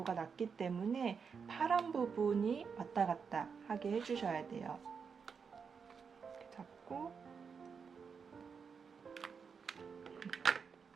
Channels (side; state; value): left; quieter; 6.0 dB